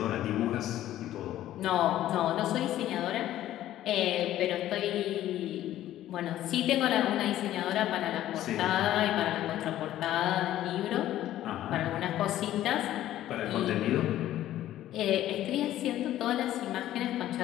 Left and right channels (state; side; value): quieter; right; 13.2 dB